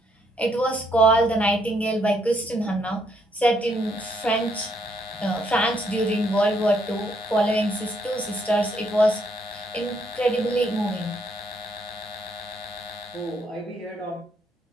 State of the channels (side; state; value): both; normal; correlation 0.72